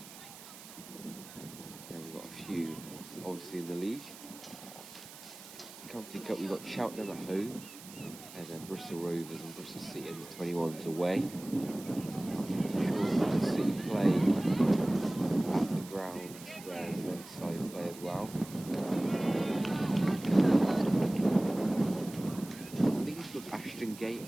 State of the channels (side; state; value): right; noise; hiss, 16 dB below the sound